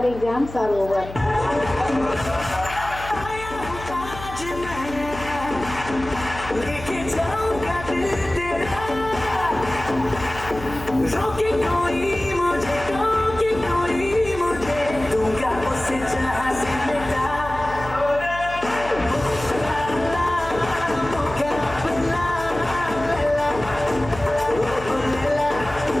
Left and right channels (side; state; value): left; noise; hum, 13 dB below the sound